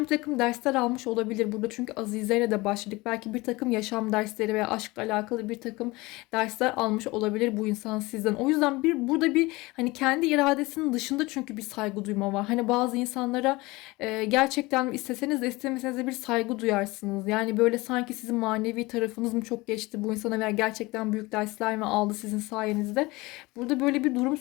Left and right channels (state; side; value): quieter; right; 22.1 dB